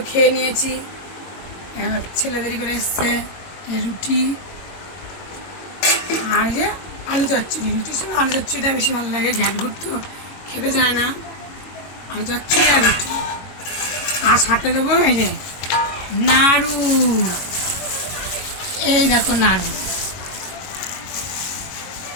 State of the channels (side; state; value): right; late; 22 ms